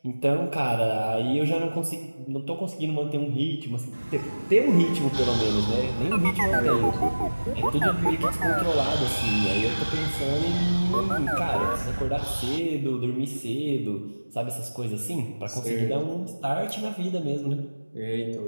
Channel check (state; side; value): inverted; both; correlation -1.00